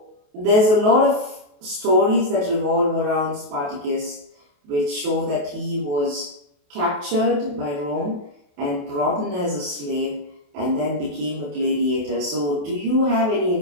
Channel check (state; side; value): late; left; 28 ms